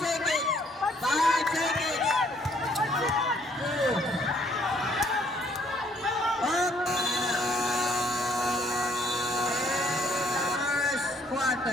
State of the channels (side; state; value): both; normal; correlation 0.65